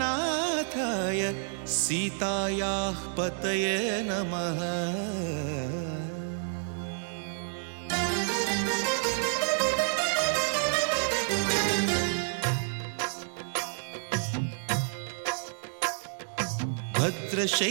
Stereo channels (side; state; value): left; silent; digital silence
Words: సీతాయాః పతయే నమః.